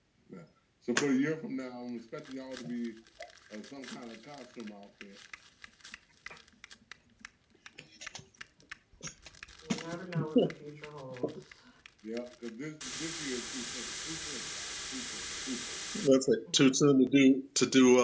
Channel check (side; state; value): both; identical; correlation 1.00